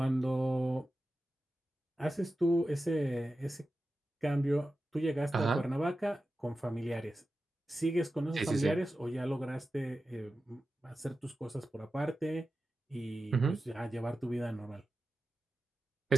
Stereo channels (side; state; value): both; normal; correlation 0.93